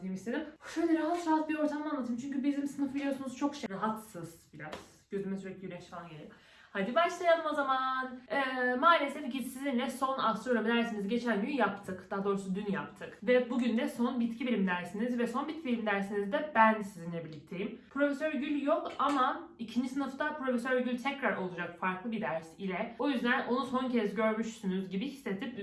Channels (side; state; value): both; identical; correlation 1.00